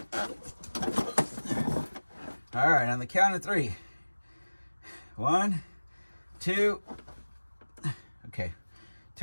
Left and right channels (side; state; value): both; inverted; correlation -1.00